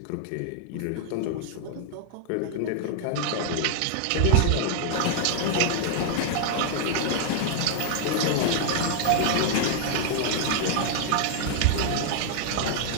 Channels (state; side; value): different; both; correlation -0.01